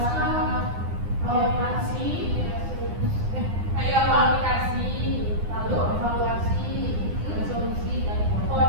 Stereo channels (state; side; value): late; left; 9.8 ms